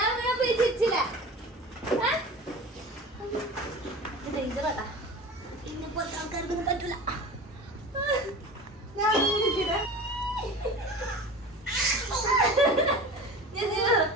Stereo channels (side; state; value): both; normal; correlation 0.35